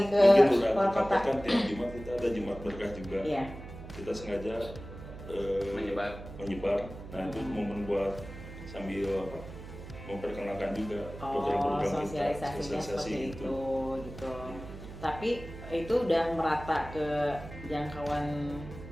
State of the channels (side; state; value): right; noise; hum, 13 dB below the sound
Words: ke luar kota. Kan tiap Jumat kita ada Jumat Berkah juga. Iya. Kita sengaja menyebar. Nah itu momen buat sambil memperkenalkan juga program-program kita, sosialisasinya seperti itu gitu. Tapi itu udah merata ke jangkauan